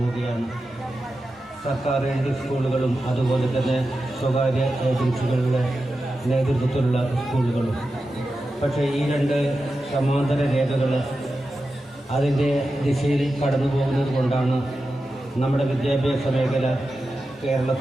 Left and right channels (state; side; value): normal; both; correlation 0.91